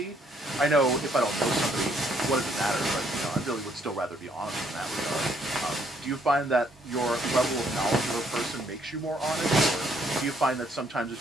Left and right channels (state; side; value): normal; both; correlation 0.69